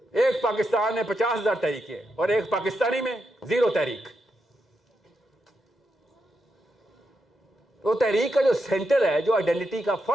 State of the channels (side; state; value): both; normal; correlation 0.85